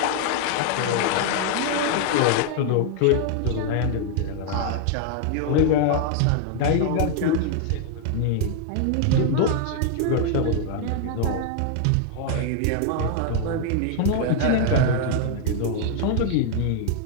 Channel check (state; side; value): different; both; correlation 0.00